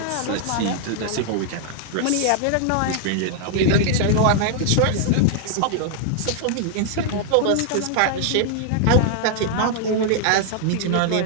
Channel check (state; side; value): different; both; correlation 0.00